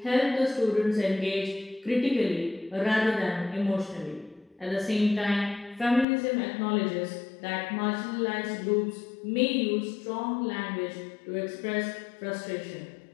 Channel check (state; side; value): drops out; right; at 6.1 s